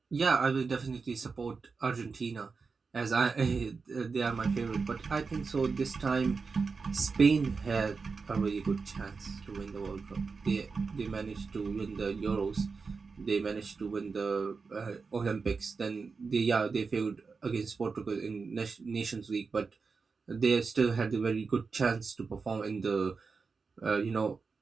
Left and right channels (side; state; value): left; quieter; 4.8 dB